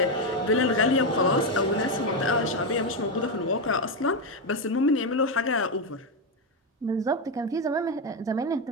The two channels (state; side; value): normal; both; correlation 0.08